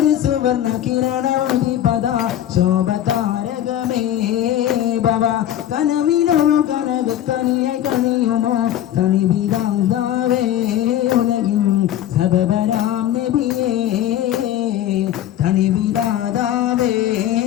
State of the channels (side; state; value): right; quieter; 11.9 dB